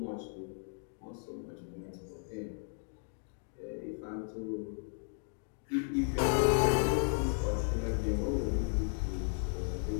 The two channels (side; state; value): right; silent; 54 dB below the other